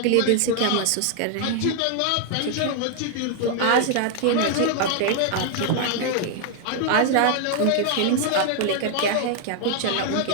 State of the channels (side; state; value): both; different; correlation 0.00